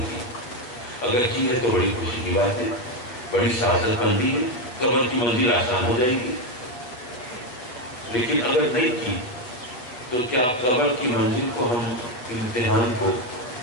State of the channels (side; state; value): right; late; 8.0 ms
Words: کی؟ اگر کی ہے تو بڑی خوشی کی بات ہے، بڑی سعادت مندی ہے، قبر کی منزل آسان ہو جائے گی. لیکن اگر نہیں کی تو کیا قبر کی منزل کو ہم امتحان کو